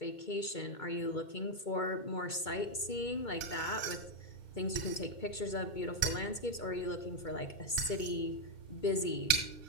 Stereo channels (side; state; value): right; late; 2.1 ms